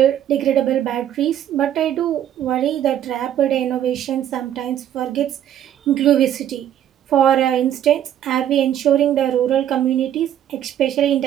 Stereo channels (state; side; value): quieter; left; 10.8 dB